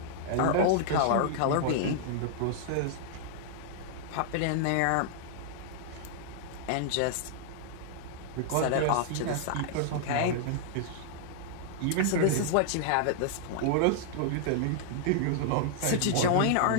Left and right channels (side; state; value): both; different; correlation -0.01